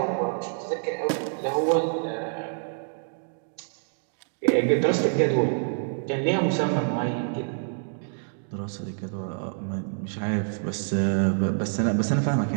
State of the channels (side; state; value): left; silent; digital silence